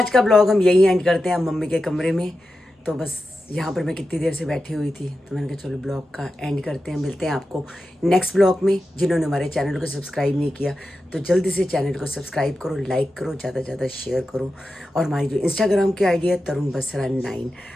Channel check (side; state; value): both; normal; correlation 0.91